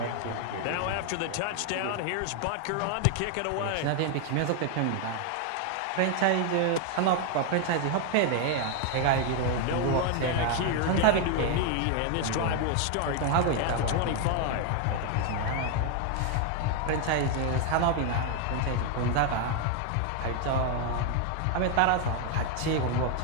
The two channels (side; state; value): both; different; correlation 0.01